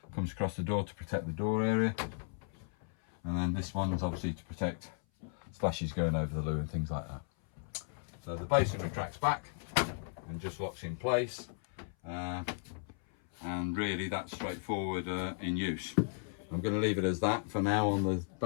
Comes across the door to protect the door area. And then this one is obviously to protect splashes going over the loo and things like that. So the basin retracts back and just locks in place. And really that's straightforward in use. I'm going to leave it as that for now on the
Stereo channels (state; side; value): silent; right; 54 dB below the other